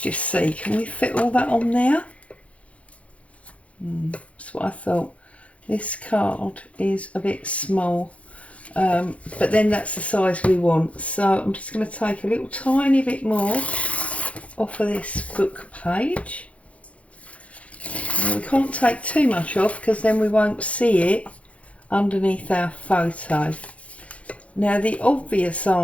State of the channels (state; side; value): late; right; 0.064 ms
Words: just see, can we fit all that on there? That's what I thought. This card is a bit small, but then that's the size we want. So I'm just going to take a little tiny bit more off of this book page. Now, we can't take too much off because then we won't see it underneath our photo. Now, the obvious